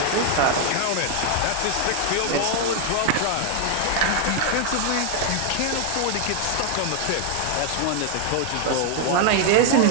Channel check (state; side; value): different; both; correlation 0.00